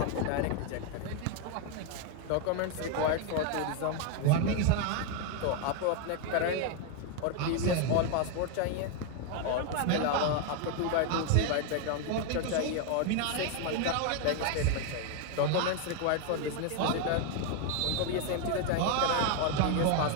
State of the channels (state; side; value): different; both; correlation 0.01